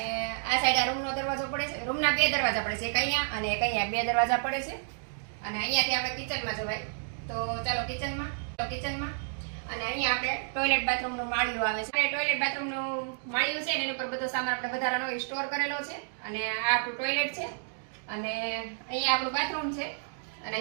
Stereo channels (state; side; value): silent; left; digital silence